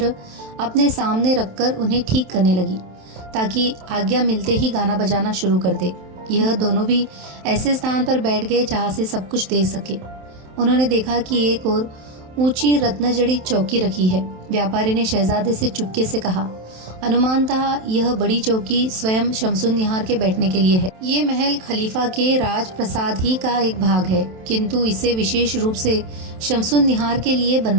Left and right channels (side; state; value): left; late; 27 ms